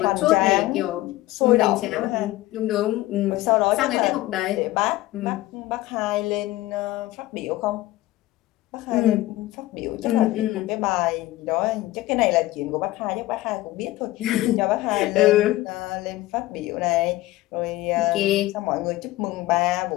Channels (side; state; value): right; quieter; 17.1 dB